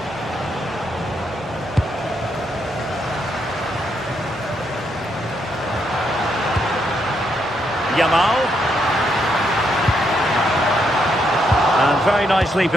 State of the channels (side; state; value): both; normal; correlation 0.78